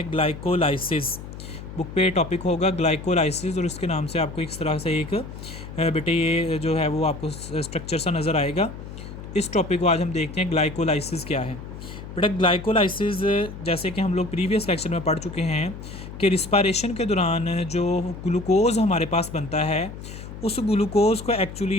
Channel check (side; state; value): left; noise; hum, 12 dB below the sound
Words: ग्लाइकोलाइसिस। बुक पे टॉपिक होगा ग्लाइकोलाइसिस और इसके नाम से आपको इस तरह से एक बेटे ये जो है वो आपको स्ट्रक्चर सा नज़र आएगा। इस टॉपिक को आज हम देखते हैं ग्लाइकोलाइसिस क्या है। बेटा ग्लाइकोलाइसिस जैसे कि हम लोग प्रीवियस लेक्चर में पढ़ चुके हैं कि रिस्पायरेशन के दौरान जो ग्लूकोज़ हमारे पास बनता है उस ग्लूकोज़ को